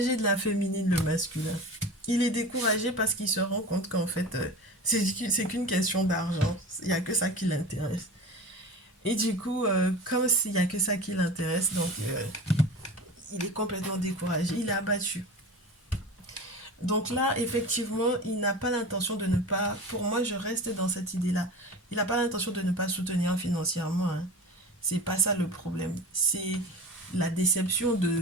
de la féminine, le masculin. Il est découragé parce qu'il se rend compte qu'en fait, c'est qu'une question d'argent. Il n'y a que ça qui l'intéresse. Et du coup, comme s'il n'y a que ça qui l'intéresse, donc il est complètement découragé. Il est abattu. Donc là, effectivement, il n'a pas l'intention de ne pas... Pour moi, je reste dans cette idée-là. Il n'a pas l'intention de ne pas soutenir financièrement. Hein. C'est pas ça le problème. C'est la déception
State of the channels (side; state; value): both; normal; correlation 0.33